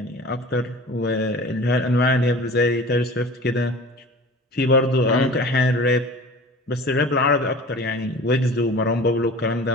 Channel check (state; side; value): normal; both; correlation 0.40